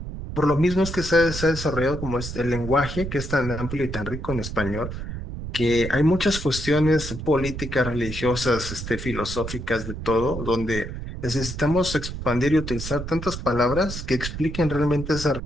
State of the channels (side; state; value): right; noise; rumble, 7 dB below the sound